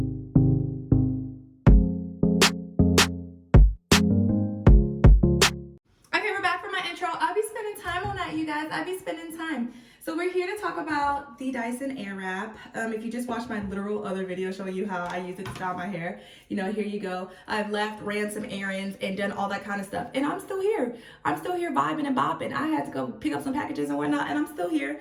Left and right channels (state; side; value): identical; both; correlation 1.00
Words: I'll be spending time on that, you guys. I'll be spending time. So we're here to talk about the Dyson Airwrap. If you just watched my literal other video showing you how I use it to style my hair, here you go. I've left, ran some errands, and done all that kind of stuff. And I'm still here. I'm still here vibing and bopping. I had to go pick up some packages and whatnot, and I'm still here.